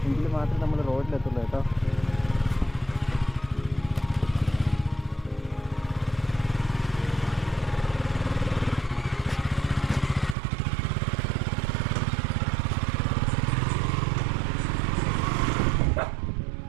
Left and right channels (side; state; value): left; drops out; at 10.4 s